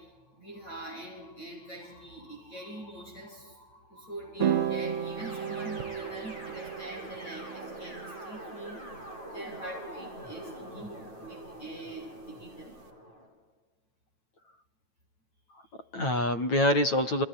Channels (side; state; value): right; late; 9.1 ms